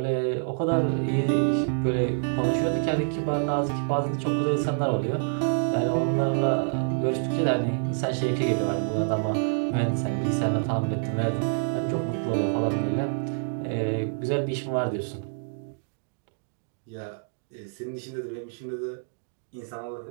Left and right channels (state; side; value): silent; left; digital silence